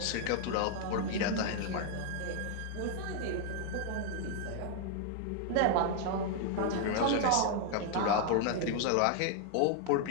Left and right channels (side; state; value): both; different; correlation 0.00